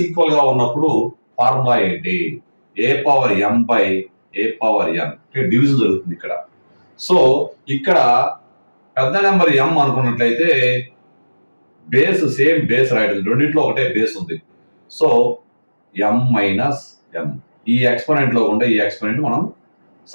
ఈక్వల్ గా ఉన్నప్పుడు ఫార్ములా ఏంటి? A power m by a power n division జరుగుతుంది ఇక్కడ. సో ఇక్కడ పెద్ద నెంబర్ ఎం అనుకున్నట్లయితే బేస్ సేమ్ బేస్ రాయడం, రెండింటిలో ఒకటే బేస్ ఉంది. సో ఎం మైనస్ ఎం, ఈ ఎక్స్పోనెంట్ లో ఉండే ఈ ఎక్స్పోనెంట్ మనం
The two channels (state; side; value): inverted; both; correlation -1.00